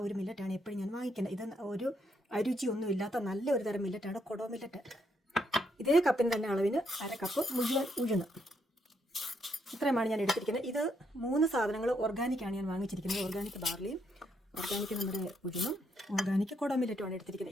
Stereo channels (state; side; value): normal; both; correlation 0.76